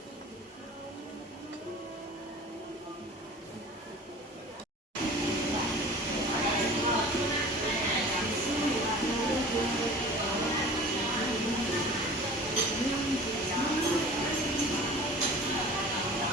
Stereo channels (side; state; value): both; normal; correlation 0.41